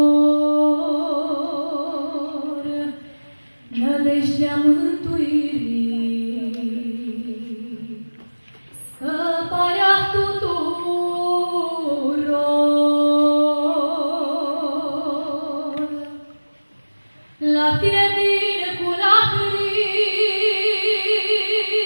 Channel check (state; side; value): inverted; both; correlation -1.00